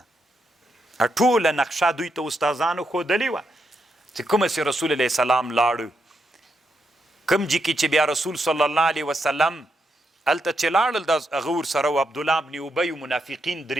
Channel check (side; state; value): both; normal; correlation 0.81